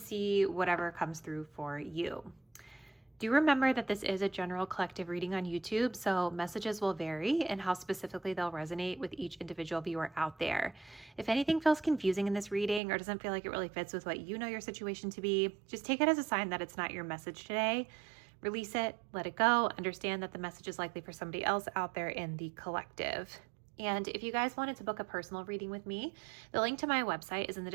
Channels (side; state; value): left; drops out; at 12.8 s